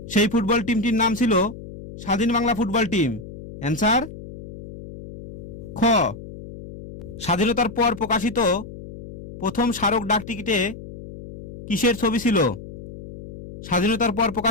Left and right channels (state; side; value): noise; left; hum, 14 dB below the sound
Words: সেই ফুটবল টিমটির নাম ছিল স্বাধীন বাংলা ফুটবল টিম। অ্যান্সার খ। স্বাধীনতার পর প্রকাশিত প্রথম স্মারক ডাকটিকিটে কিসের ছবি ছিল? স্বাধীনতার পর